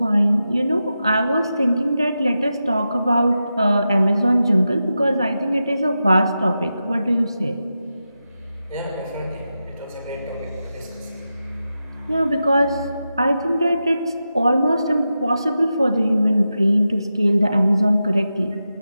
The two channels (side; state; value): both; inverted; correlation -0.90